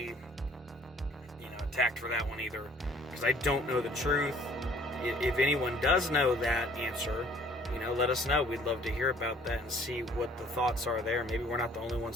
attacked for that one either, because I don't know the truth. If anyone does know that answer, let us know. We'd love to hear about that and see what the thoughts are there. Maybe we're not the only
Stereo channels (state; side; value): normal; both; correlation 0.55